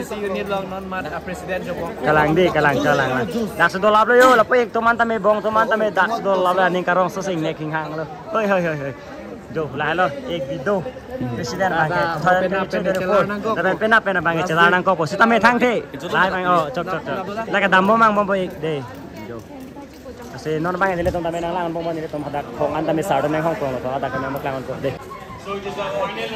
unit long non man president joko kalang lah dak sedol lap lo yo lapu ek toman tame bong toman tame dak sedol lap ning karong sesing nek king hang lo hoi jo lah lo ek video presiden bangke thoyan pena bangke celanang ko po sitame thang the lai bang chok la ka dambo mang bombo ek de jo kasi non bang dile tom tame nang lang bombo ni tom hadak khong an tame sardo nang hong kong lo hadak ka mak lang ko de so it is the final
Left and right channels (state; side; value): identical; both; correlation 1.00